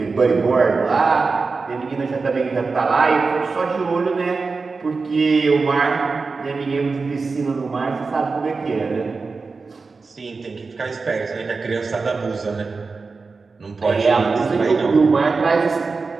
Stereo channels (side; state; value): left; quieter; 4.3 dB